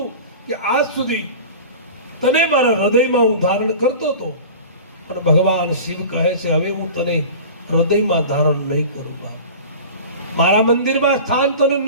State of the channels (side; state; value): both; inverted; correlation -0.36